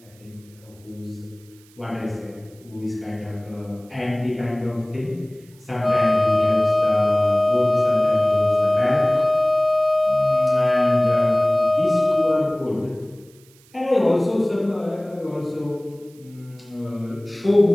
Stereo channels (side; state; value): right; noise; hiss, 29 dB below the sound